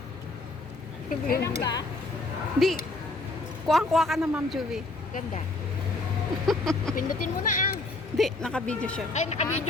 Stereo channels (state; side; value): quieter; right; 3.1 dB